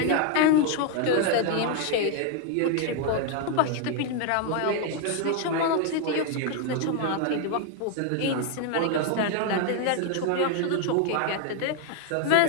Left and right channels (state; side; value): different; both; correlation 0.00